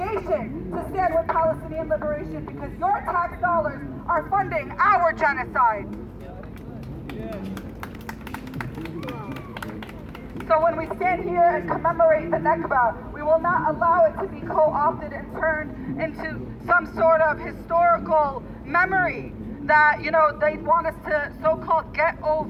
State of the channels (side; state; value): both; identical; correlation 1.00